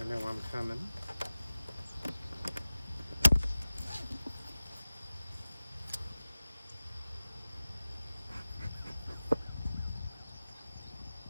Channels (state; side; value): inverted; both; correlation -0.96